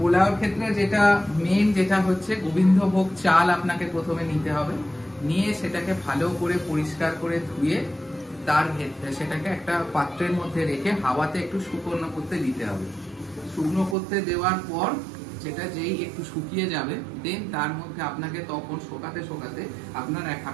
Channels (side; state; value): left; drops out; at 14.0 s